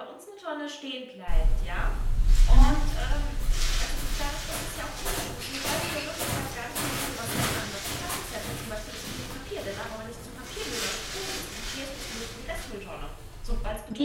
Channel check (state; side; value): identical; both; correlation 1.00